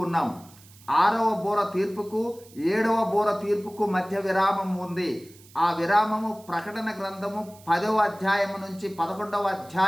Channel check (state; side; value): noise; right; hiss, 24 dB below the sound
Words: ఉన్నాం. 6వ బూర తీర్పుకు 7వ బూర తీర్పుకు మధ్య విరామం ఉంది. ఆ విరామము ప్రకటన గ్రంథము 10వ అధ్యాయము నుంచి 11వ